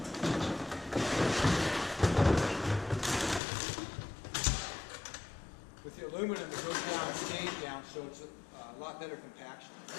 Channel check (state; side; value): drops out; right; at 3.4 s